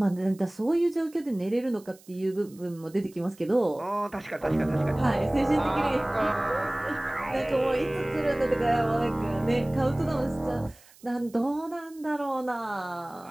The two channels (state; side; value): noise; right; hiss, 26 dB below the sound